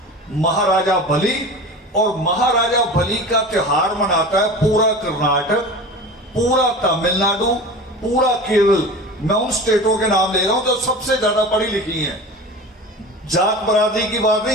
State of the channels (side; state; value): both; normal; correlation 0.34